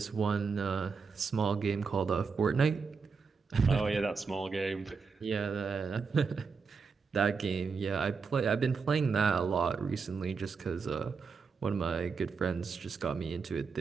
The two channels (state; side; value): quieter; left; 5.3 dB